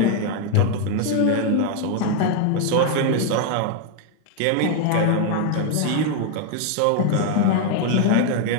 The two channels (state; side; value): different; both; correlation 0.00